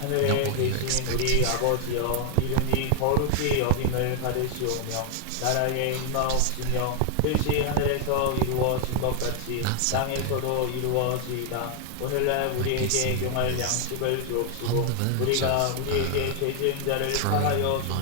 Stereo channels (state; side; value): different; both; correlation 0.00